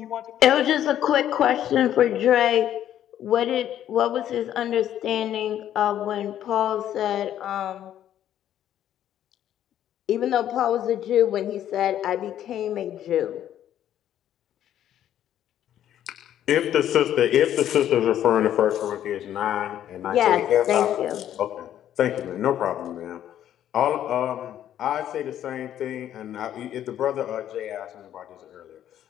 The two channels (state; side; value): quieter; right; 11.1 dB